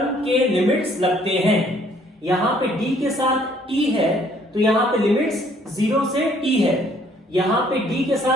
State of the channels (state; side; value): normal; both; correlation 0.62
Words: के लिमिट्स लगते हैं. यहाँ पे d के साथ t है, तो यहाँ पे लिमिट्स 0 से t है. यहाँ पे d के